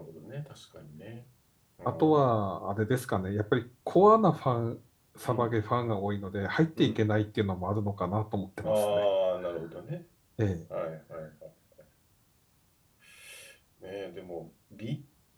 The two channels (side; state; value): both; identical; correlation 1.00